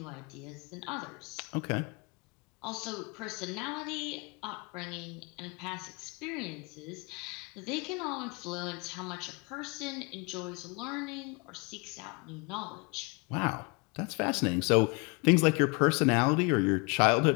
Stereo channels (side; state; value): right; quieter; 30.0 dB